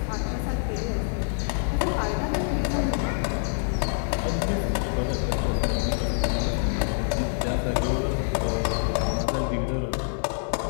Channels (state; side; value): silent; right; 56 dB below the other